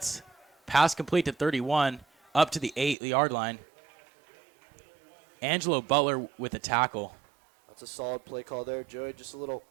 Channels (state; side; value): drops out; left; at 3.0 s